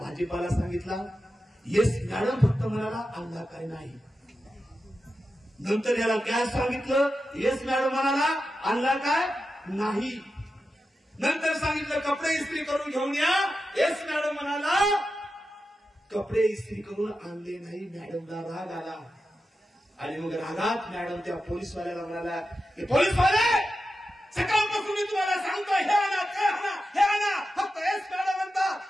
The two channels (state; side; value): normal; both; correlation 0.90